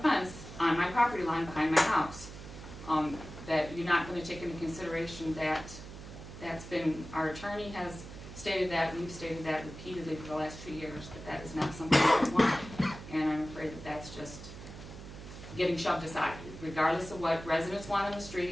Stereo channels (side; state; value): right; noise; hum, 13 dB below the sound